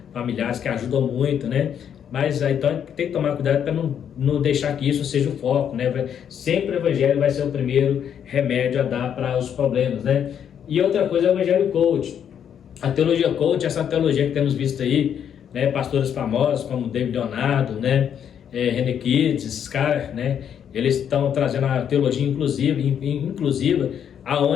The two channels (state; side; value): quieter; right; 8.7 dB